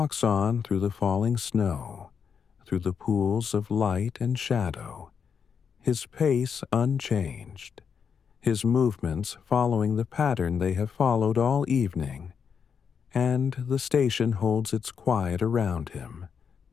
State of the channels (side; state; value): right; quieter; 6.7 dB